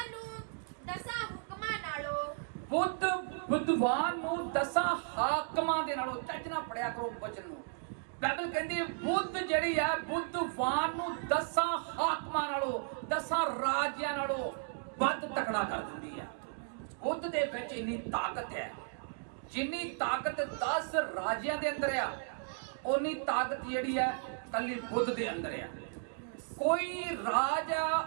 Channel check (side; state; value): left; silent; digital silence